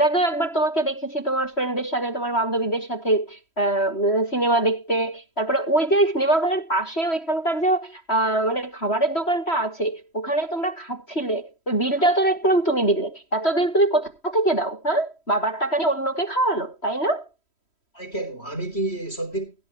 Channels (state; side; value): late; right; 3.1 ms